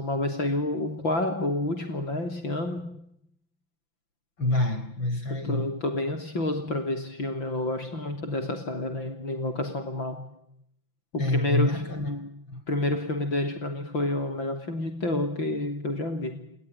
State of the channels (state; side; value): late; right; 5.9 ms